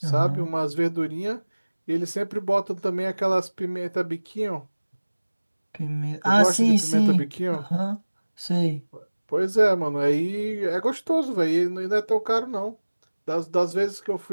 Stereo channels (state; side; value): inverted; both; correlation -1.00